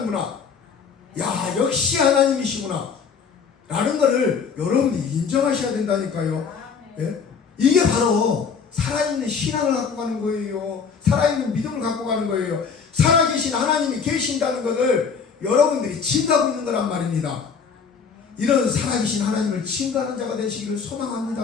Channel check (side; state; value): right; quieter; 6.0 dB